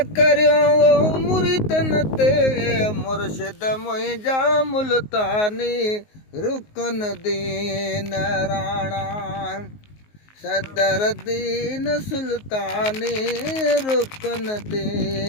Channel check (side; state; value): right; late; 19 ms